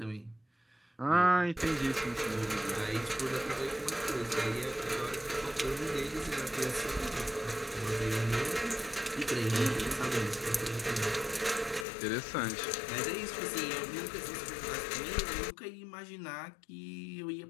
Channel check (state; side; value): drops out; right; at 11.9 s